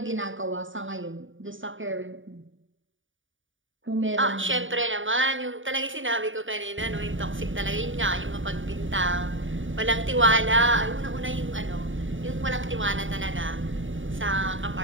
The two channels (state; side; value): late; left; 0.57 ms